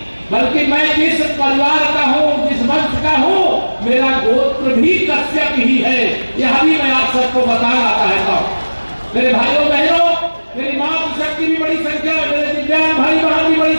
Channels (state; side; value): inverted; both; correlation -1.00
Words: बल्कि मैं जिस परिवार का हूँ, जिस वंश का हूँ, मेरा गोत्र भी कश्यप ही है। यह भी मैं आप सबको बताना चाहता हूँ। मेरे भाइयों बहनों, मेरी मातृ शक्ति भी बड़ी संख्या में, मेरे दिव्यांग भाई बहन भी बड़ी